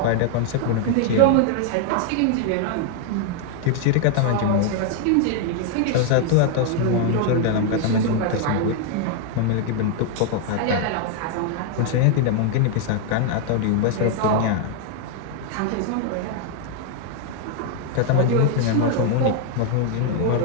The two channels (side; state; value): both; different; correlation 0.00